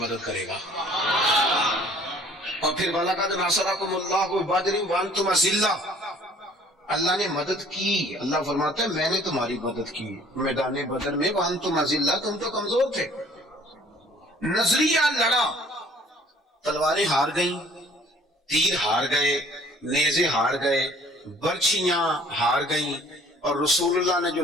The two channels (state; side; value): normal; both; correlation 0.55